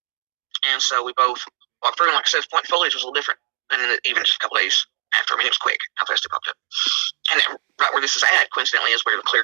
And so we both walked through. And like I said, the point foliage was a little different than even just a couple days after. It was quick how fast it popped up. And right where this is at, coincidentally, is where the clear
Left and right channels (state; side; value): silent; left; digital silence